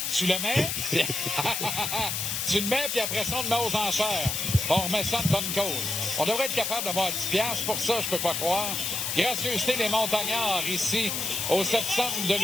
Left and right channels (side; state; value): left; noise; hiss, 1 dB below the sound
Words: tu le mets. Tu le mets, puis après ça, on le met aux enchères. On remet ça de bonne cause. On devrait être capable d'avoir 10$. Pour ça, je peux pas croire. Gracieuseté des montagnards ici, au septembre de